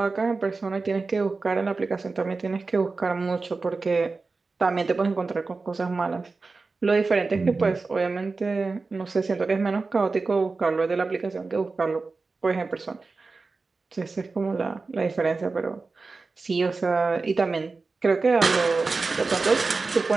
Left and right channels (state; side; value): quieter; left; 4.0 dB